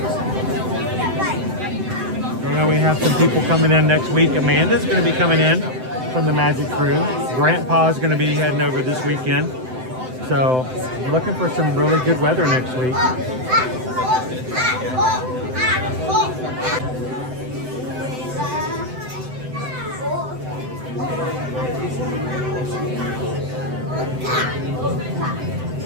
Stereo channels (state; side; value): late; left; 7.8 ms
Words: I know we have some people coming in next week. Amanda's going to be coming in from the Magic Crew. Grandpa's going to be heading over this weekend. So looking for some really good weather next week.